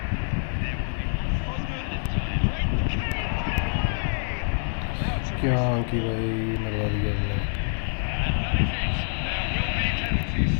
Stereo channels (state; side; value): silent; right; 61 dB below the other